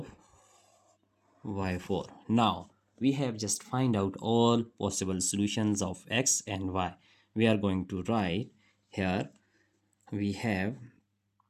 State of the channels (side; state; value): both; identical; correlation 1.00